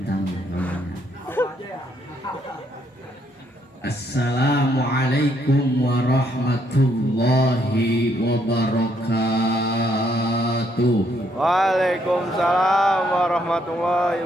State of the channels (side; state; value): both; normal; correlation 0.72